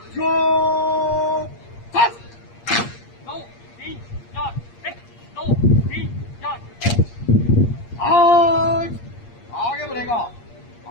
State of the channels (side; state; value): right; late; 8.5 ms